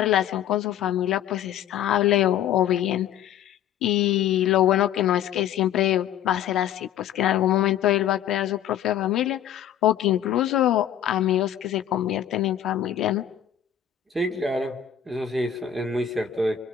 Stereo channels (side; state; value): right; quieter; 10.2 dB